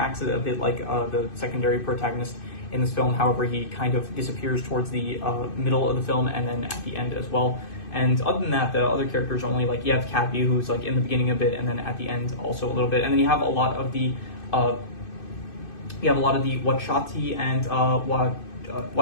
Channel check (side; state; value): right; late; 2.6 ms